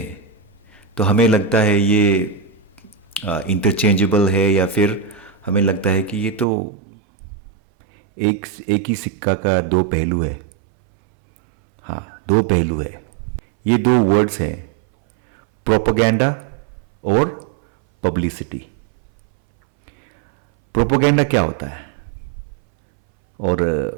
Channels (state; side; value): drops out; left; at 6.5 s